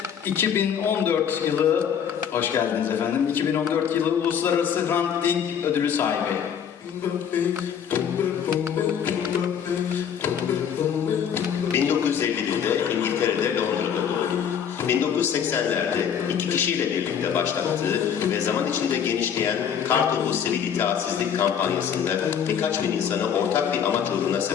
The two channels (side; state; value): right; quieter; 8.1 dB